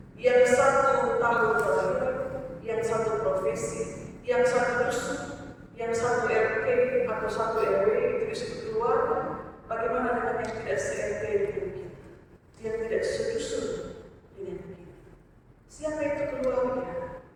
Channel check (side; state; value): both; identical; correlation 1.00